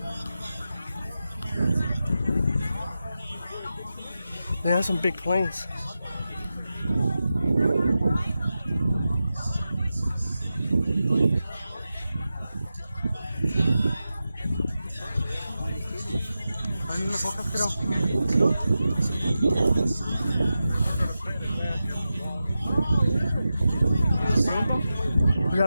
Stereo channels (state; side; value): inverted; both; correlation -0.92